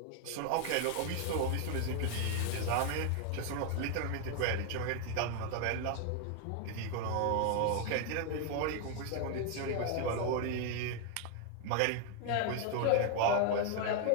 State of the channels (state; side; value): different; both; correlation 0.01